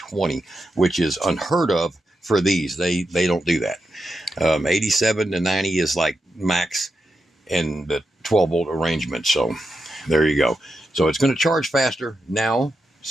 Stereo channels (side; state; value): both; normal; correlation 0.87